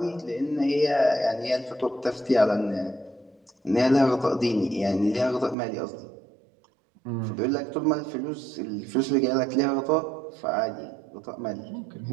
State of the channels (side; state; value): left; drops out; at 5.6 s